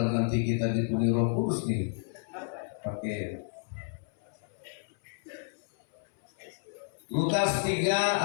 nanti kita dipenuhi Roh Kudus nih. Pakai Lukas 3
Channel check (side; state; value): right; silent; 57 dB below the other